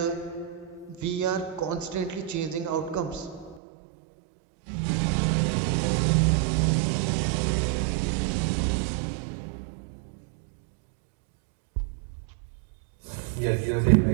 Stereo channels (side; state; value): left; drops out; at 3.6 s